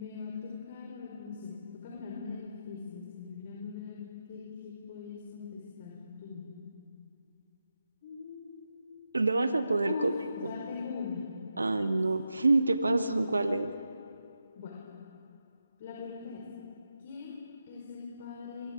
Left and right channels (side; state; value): both; inverted; correlation -0.88